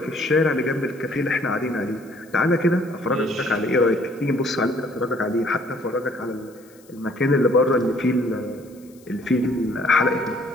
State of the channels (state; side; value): noise; left; hiss, 28 dB below the sound